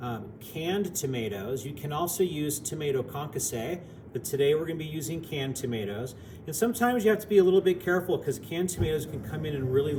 canned tomatoes. You can also use tomato concasse, but today we're going to be using canned tomatoes. And sometimes you have to be a little bit careful because canned tomatoes can come in really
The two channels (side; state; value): both; identical; correlation 1.00